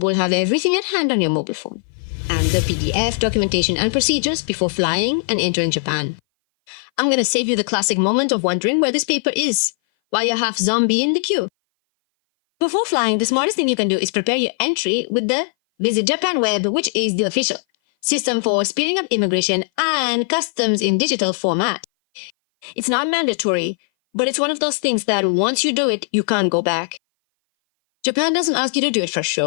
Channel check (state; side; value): silent; right; 59 dB below the other